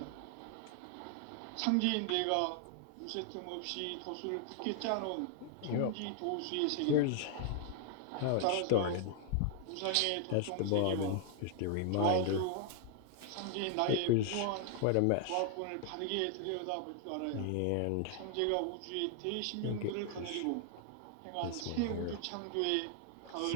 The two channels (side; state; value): both; different; correlation 0.00